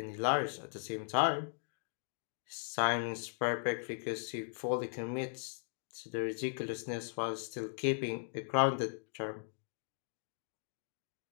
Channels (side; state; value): right; silent; digital silence